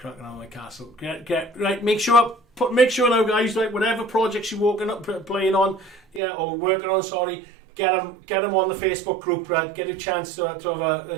on my castle. Get right. Make sure now, guys. Like whatever projects you're playing on, or working on. Sorry, get them on the Facebook group. Right, get a chance to have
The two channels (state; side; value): drops out; left; at 6.2 s